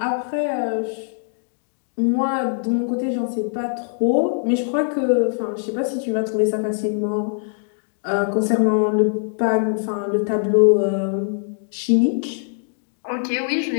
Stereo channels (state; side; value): silent; right; digital silence